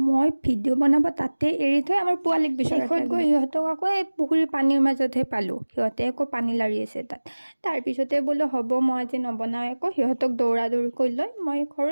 ভিডিঅ' বনাব তাতে এৰি থৈ আমাৰ পোৱালীক শেষত গৈ সিহঁতক আকৌ এই পুখুৰীৰ পানীৰ মাজতহে পালোঁ। সিহঁতে আকৌ পানী লাৰি আছে তাত। তাৰপিছতে বোলো হ'ব মই আজি নবনাওঁ আকৌ, সিহঁতক দৌৰা দৌৰি কৰি লৈ মই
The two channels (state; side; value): inverted; both; correlation -1.00